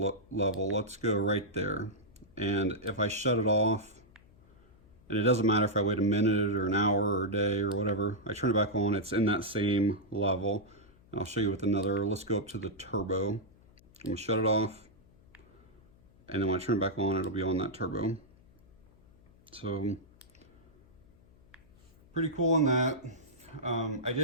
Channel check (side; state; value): left; noise; hum, 27 dB below the sound